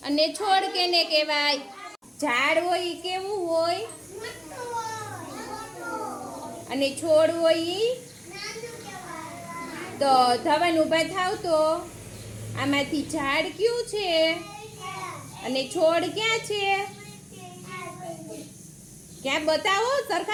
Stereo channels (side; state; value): both; identical; correlation 1.00